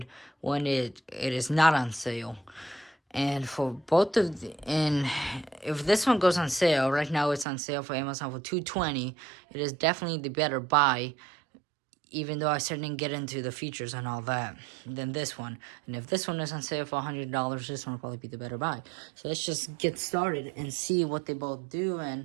when it is not on sale. And for both of and if this one goes on sale right now, it's on sale for Amazon for $220. It is definitely the better buy, even though I certainly didn't get into the features and all that, than this one. And if this one is on sale for $100, this one will probably be the better buy. So let's just get started and see what they both do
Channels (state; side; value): drops out; left; at 7.5 s